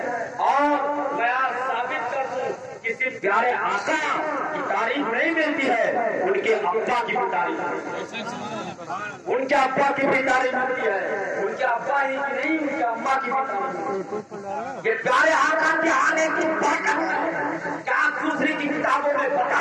اور میں ثابت کر دوں کسی پیارے آقا کی تعریف نہیں ملتی ہے، ان کے ابا کی بھی تعریف، ان کے ابا کی بھی تعریف ملتی ہے. ان کے ابا ہی کی نہیں، ان کے اما کی بھی تعریف. یہ پیارے آقا کے آنے کی برکت ہے. کیا دوسری کی کتابوں میں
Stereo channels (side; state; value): both; identical; correlation 1.00